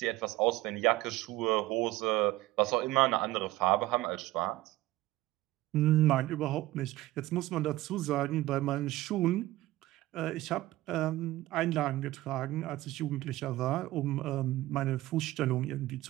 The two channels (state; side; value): quieter; left; 16.9 dB